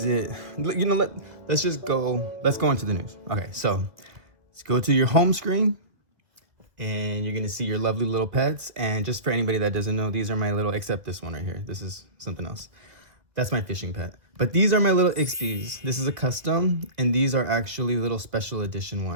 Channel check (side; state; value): left; late; 2.1 ms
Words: it? Let's go into the news. Okay, so let's go to your home screen and you're going to see your lovely little pets. And just for anybody that doesn't know, these are my except this one right here. This is something else. That's my fishing pet. But these are my little Ixpies. This is a custom, and these are actually little special edition